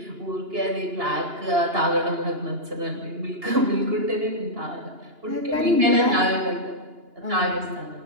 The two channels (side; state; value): left; late; 2.9 ms